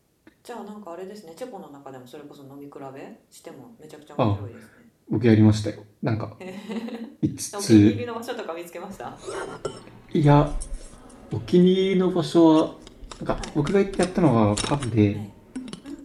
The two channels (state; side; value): identical; both; correlation 1.00